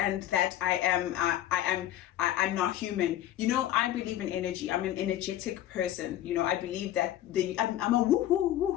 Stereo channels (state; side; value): quieter; right; 12.7 dB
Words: I'm not human. You know, I believe in energy. I'm an energetic person. You know, I believe that I'm a woohoo